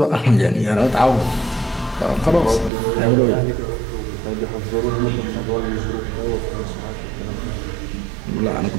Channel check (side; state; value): left; drops out; at 2.7 s